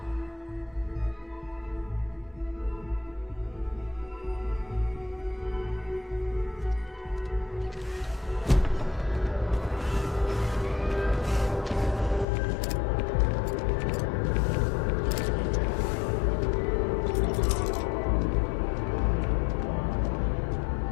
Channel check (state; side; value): drops out; right; at 12.2 s